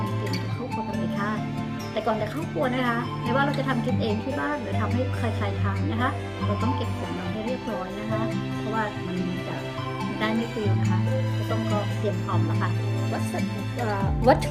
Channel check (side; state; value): both; identical; correlation 1.00